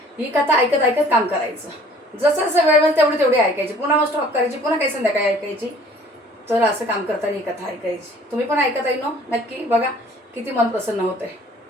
ही कथा ऐकत ऐकत काम करायचं. जसं जसं वेळ मिळेल तेवढी तेवढी ऐकायची, पुन्हा मग स्टॉप करायची, पुन्हा काही संध्याकाळी ऐकायची. तर असं काम करताना ही कथा ऐकायची. तुम्ही पण ऐकत आहे ना, नक्की बघा किती मन प्रसन्न होत आहे.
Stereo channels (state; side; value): normal; both; correlation 0.53